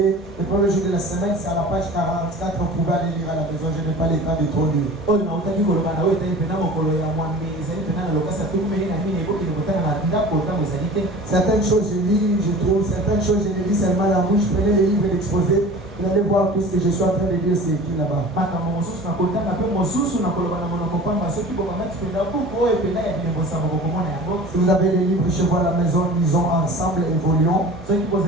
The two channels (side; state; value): both; normal; correlation 0.40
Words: le premier jour de la semaine, c'est à la page 44, on pouvait aller lire à la maison, je n'ai pas le temps de trop lire. Certaines choses je lis, je trouve, certaines choses je les lis seulement la bouche, je prenais les livres et l'exposé. Vous allez voir tout ce que je suis en train de dire, c'est écrit là-bas. Si vous avez des livres chez vous à la maison, lisons ensemble, évoluons.